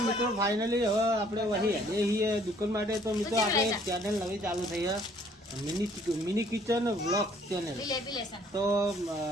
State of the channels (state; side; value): normal; both; correlation 0.60